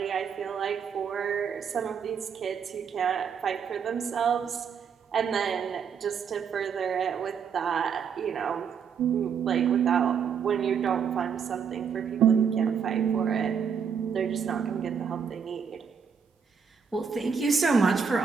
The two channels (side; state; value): left; quieter; 6.7 dB